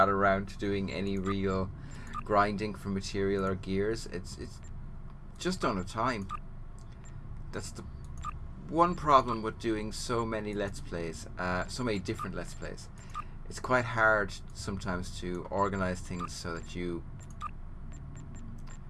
to doing any real grinding for material or gears. It's just don't have time. That's the one problem with doing so many Let's Plays, so many different Let's Plays. It's quite hard sometimes to organize things so that you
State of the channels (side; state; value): both; identical; correlation 1.00